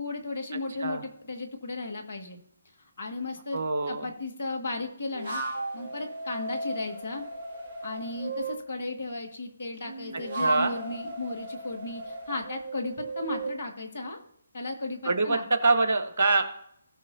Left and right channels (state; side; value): inverted; both; correlation -0.81